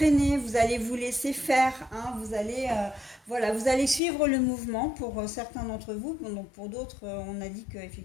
vous allez vous laisser faire, hein, vous allez, voilà, vous allez suivre le mouvement pour certains d'entre vous, donc pour d'autres, on a dit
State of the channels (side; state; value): right; drops out; at 4.0 s